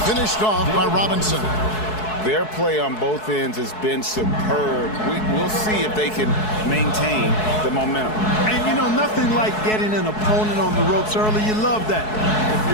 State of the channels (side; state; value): right; late; 4.7 ms